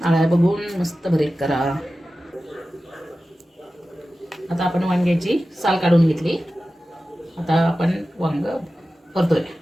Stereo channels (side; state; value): both; normal; correlation 0.95